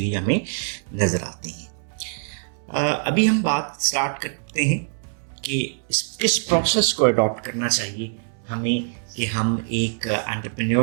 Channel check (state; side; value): silent; left; digital silence